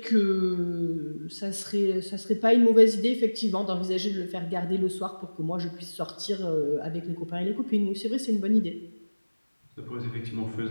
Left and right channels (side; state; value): both; inverted; correlation -1.00